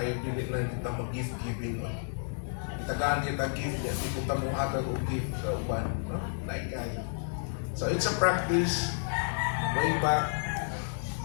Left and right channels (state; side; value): silent; right; digital silence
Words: dili lang kita mag-gift giving. Tagaan kita gift niya, di kita mo hatag o gift sa uban. No? Lain kayo. So it's a practice way back